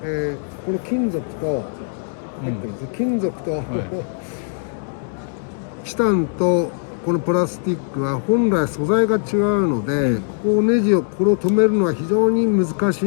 この金属と、金属と、チタンとこのプラスチックは本来素材が違うので、ここをネジをこれを止めるのは非常に難し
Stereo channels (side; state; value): right; silent; 65 dB below the other